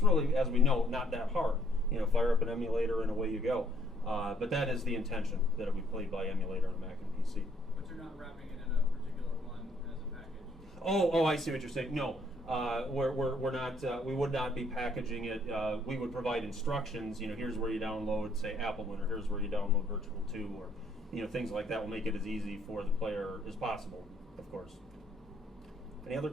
really, as we know, not that hard. Fire up an emulator and away you go. But that is the intention, that it be played by emulator on a Mac and PC. But you're not wrapping it in a particular one as a package? Oh, I see what you're saying. No, we're not. We would not be packaging it. We would provide instructions. Here's where you download, say, Appleman, or here's where you download Virtual 2, or things like that will make it as easy for the player as possible, of course. Any other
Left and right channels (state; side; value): normal; both; correlation 0.66